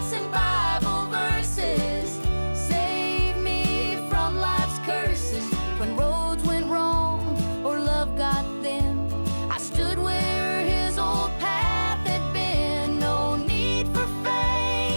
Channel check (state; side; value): inverted; both; correlation -1.00